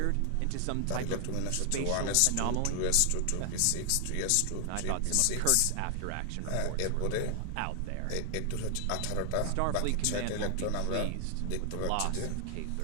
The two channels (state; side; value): different; both; correlation 0.00